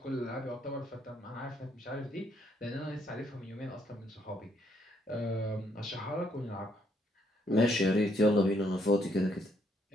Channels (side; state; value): both; normal; correlation 0.71